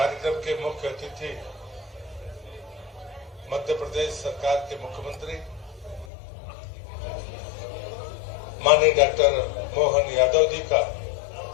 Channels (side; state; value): right; drops out; at 6.1 s